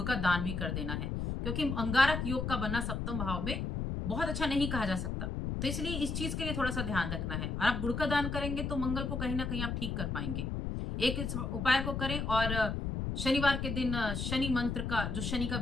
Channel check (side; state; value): left; noise; rumble, 2 dB below the sound